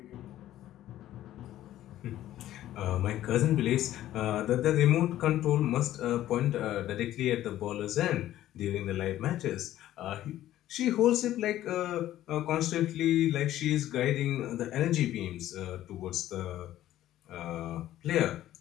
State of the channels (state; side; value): quieter; right; 13.4 dB